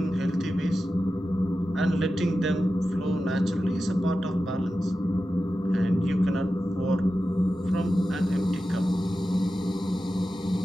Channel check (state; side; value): normal; both; correlation 0.92